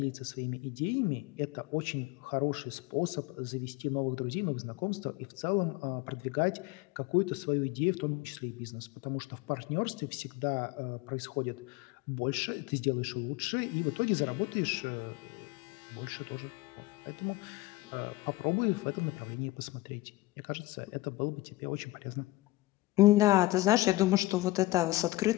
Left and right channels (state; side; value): quieter; right; 19.5 dB